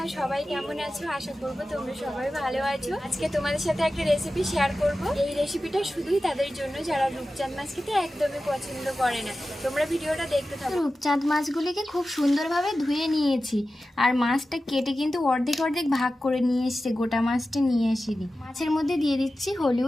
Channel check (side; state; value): both; normal; correlation 0.94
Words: সবাই কেমন আছো? আশা করব তোমরা সবাই ভালো আছো। আজকে তোমাদের সাথে একটা রেসিপি শেয়ার করব। এই রেসিপিটা শুধুই তাদের জন্য যারা রূপচাঁদ মাছ খেতে একদমই পছন্দ করে না। তোমরা ভিডিওটা দেখতে থাকো। রূপচাঁদ মাছগুলিকে খুব সুন্দরভাবে ধুয়ে নিয়েছি, আর মাছটা কেটে কিন্তু অর্ধেক অর্ধেক ভাগ করে নিয়ে এসেছে, গোটা মাছটা নিয়ে আসিনি। মাছের মধ্যে দিয়ে দিচ্ছি